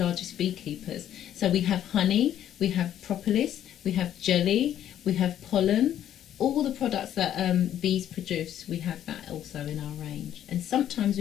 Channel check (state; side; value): quieter; right; 10.9 dB